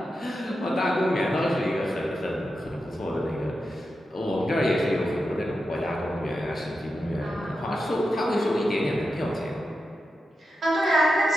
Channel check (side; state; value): both; normal; correlation 0.89